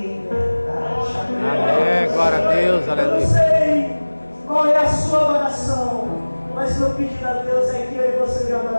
verdade. Amém, glória a Deus, aleluia. Eu não sei qual é a sua oração, mas meu pedido a Deus é que eu e você venham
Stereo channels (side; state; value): both; inverted; correlation -1.00